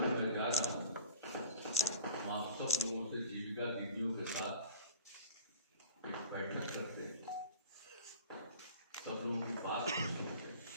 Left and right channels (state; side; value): inverted; both; correlation -0.44